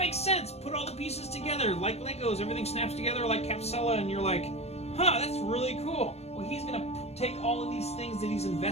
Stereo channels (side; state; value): right; late; 0.31 ms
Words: sense. Put all the pieces together like Legos. Everything snaps together like Capsella, and you're like, huh, that's really cool. Well, he's going to take all of these things that he's